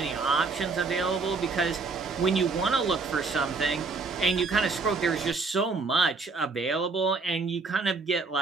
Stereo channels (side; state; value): left; quieter; 4.2 dB